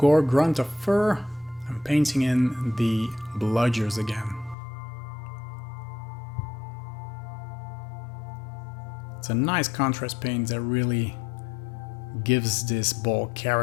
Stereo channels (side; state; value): right; drops out; at 4.5 s